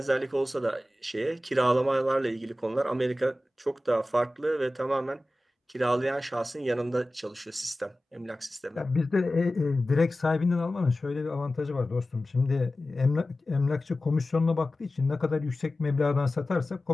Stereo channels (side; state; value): both; normal; correlation 0.95